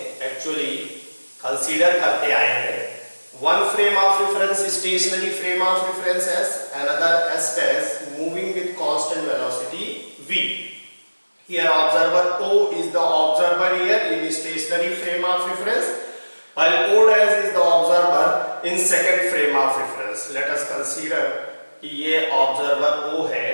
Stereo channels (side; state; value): both; inverted; correlation -1.00